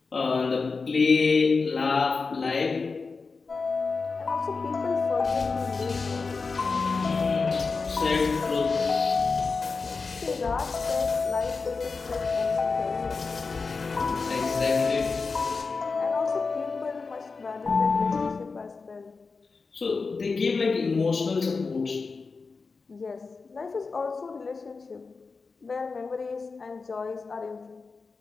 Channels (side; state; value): right; quieter; 4.4 dB